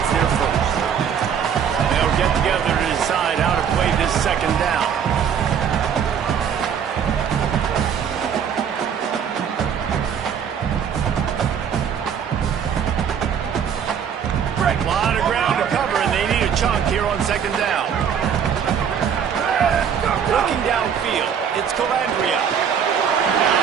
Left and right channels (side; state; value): left; quieter; 7.8 dB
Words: their first. They'll get together to decide how to play this 2nd down. A lot of ground to cover, and they need a chunk here on 2nd down. Looking downfield, it's Calandria.